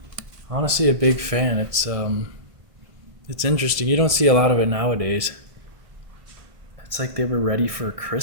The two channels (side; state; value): left; late; 1.7 ms